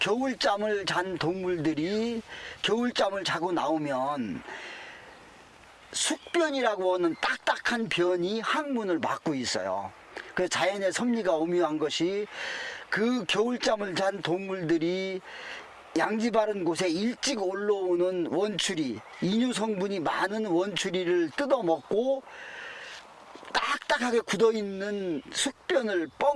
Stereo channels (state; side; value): identical; both; correlation 1.00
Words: 잔 동물들이 겨울잠을 자고 나오면 숙변이라고 하는 딱딱한 변이 항문을 막고 있어요. 그래서 자연의 섭리가 오묘한 것이, 그 겨울잠을 잔 동물들이 양지 바른 곳에 일찍 올라오는 원추리, 이뇨 성분이 많은 원추리를 뜯어먹고 딱딱하게 굳어있는 숙변을